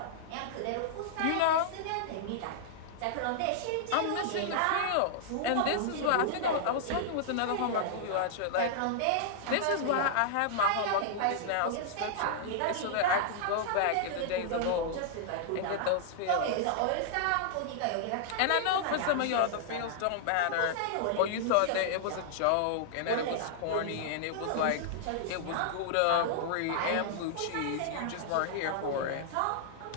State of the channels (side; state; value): both; different; correlation -0.01